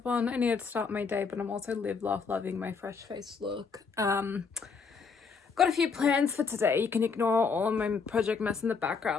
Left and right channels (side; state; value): right; quieter; 5.3 dB